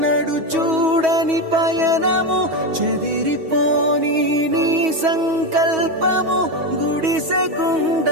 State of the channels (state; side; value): late; left; 6.2 ms